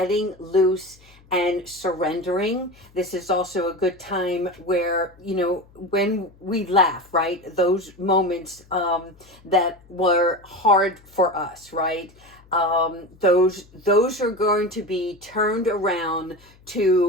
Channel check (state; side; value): noise; left; hum, 27 dB below the sound